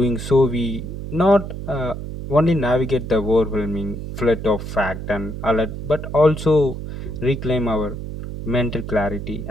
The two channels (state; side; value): noise; right; hum, 8 dB below the sound